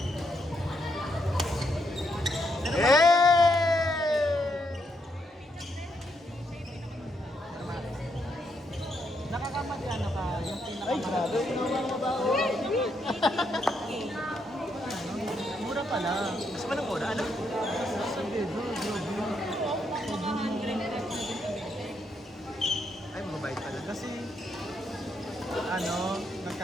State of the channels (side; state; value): both; normal; correlation 0.77